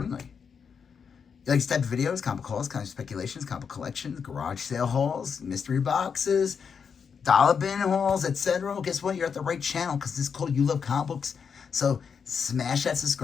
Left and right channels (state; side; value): quieter; right; 6.5 dB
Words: You like this type of videos, comic hauls, comic speculations, comic collections, garage sale hauls, mystery boxes, dollar bin hauls, etc. Well, guess what? You're at the right channel because this is called You Love Comic Books. So smash that